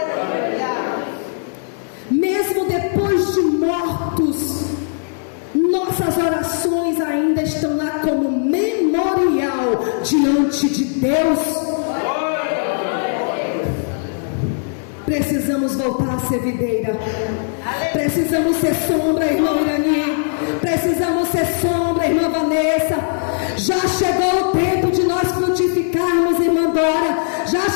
Mesmo depois de mortos, nossas orações ainda estão lá como memorial diante de Deus. Precisamos voltar a ser videira. Precisamos ser sombra, irmão Irani. Precisamos ser sombra, irmã Vanessa. Já chegou o tempo de nós frutificarmos, irmã Dora. Já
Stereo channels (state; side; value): silent; right; digital silence